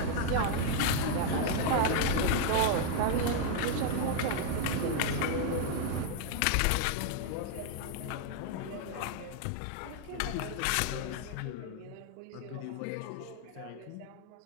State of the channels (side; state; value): both; different; correlation 0.00